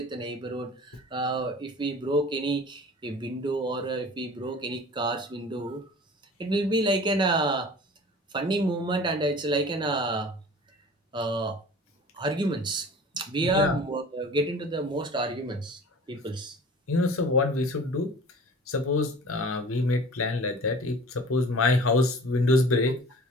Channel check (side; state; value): both; normal; correlation 0.43